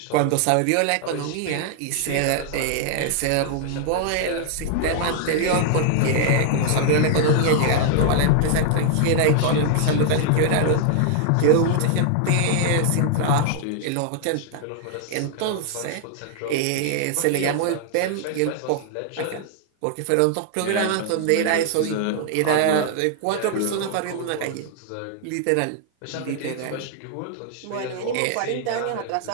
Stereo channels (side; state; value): both; different; correlation -0.01